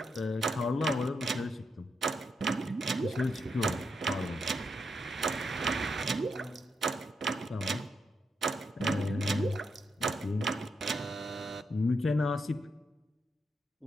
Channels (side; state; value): both; normal; correlation 0.81